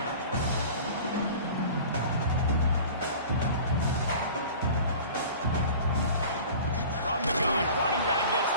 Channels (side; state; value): both; inverted; correlation -0.41